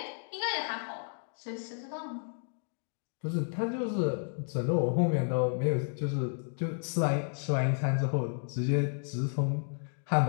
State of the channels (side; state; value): right; silent; 56 dB below the other